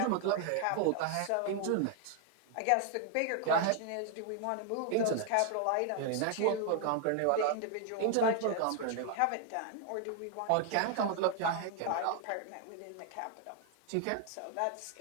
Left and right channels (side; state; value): both; different; correlation 0.00